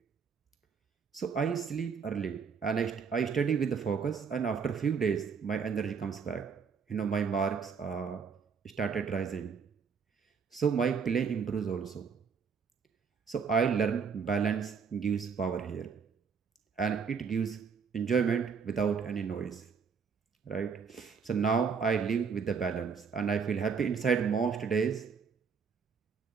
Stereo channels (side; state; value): left; quieter; 6.0 dB